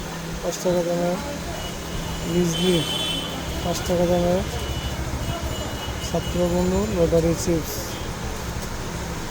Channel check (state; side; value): identical; both; correlation 1.00